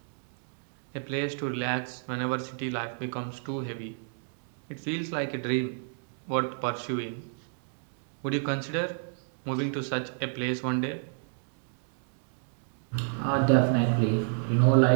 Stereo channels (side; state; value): left; silent; 58 dB below the other